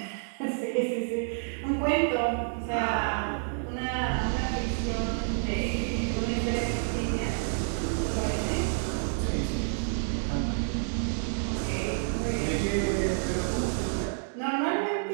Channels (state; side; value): silent; left; digital silence